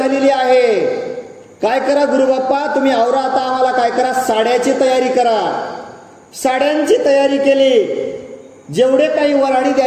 आहे. काय करा गुरुबाप्पा, तुम्ही आवरा आता, आम्हाला काय करा, साड्याची तयारी करा. साड्यांची तयारी केली. जेवढे काही वराडी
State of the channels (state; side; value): identical; both; correlation 1.00